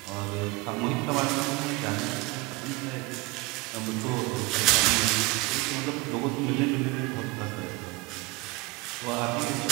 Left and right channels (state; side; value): quieter; left; 23.3 dB